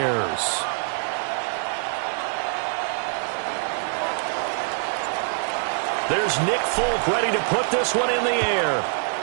There's Nick Folk ready to put this one in the air.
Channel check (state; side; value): silent; left; 62 dB below the other